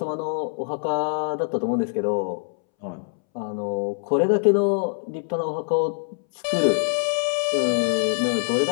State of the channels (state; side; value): silent; right; 63 dB below the other